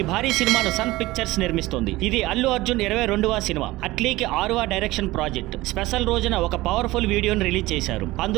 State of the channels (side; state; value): left; quieter; 18.8 dB